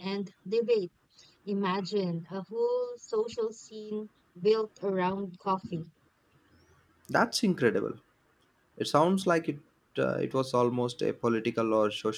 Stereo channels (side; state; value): both; identical; correlation 1.00